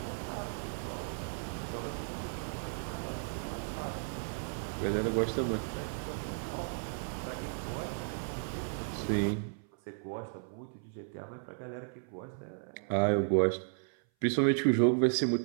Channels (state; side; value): silent; left; 55 dB below the other